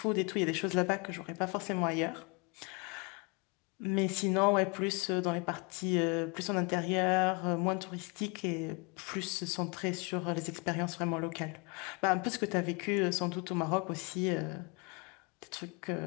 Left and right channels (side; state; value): right; quieter; 31.0 dB